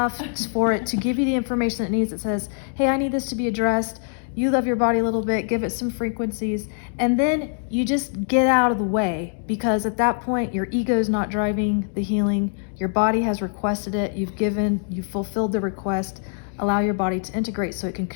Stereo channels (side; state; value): right; silent; 63 dB below the other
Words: for it to give you the information it needs. It says, hey, I need this to be addressed. You love your body a little bit, give it some frequencies, and then you just get out of the way, because at that point your ego is not driving the healing. Your body has requested it. You've fulfilled the request. Allow your body to integrate so it can